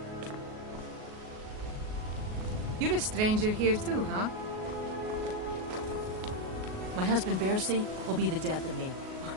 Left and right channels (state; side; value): late; left; 38 ms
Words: You're a stranger here too, huh? My husband Bercy will be the death of me.